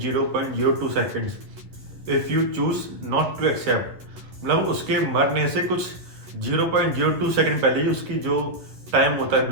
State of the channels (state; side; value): late; left; 11 ms